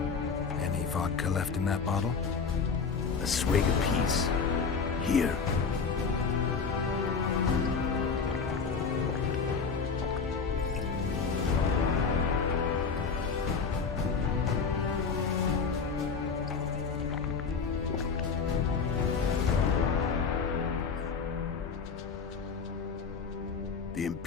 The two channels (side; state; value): right; quieter; 5.3 dB